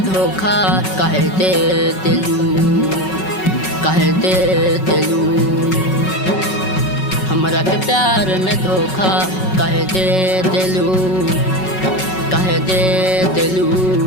धोखा काहे दे दिलू, काहे दे दिलू। हमरा के प्यार में धोखा काहे दे दिलू, काहे दे दिलू।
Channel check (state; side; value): late; right; 5.3 ms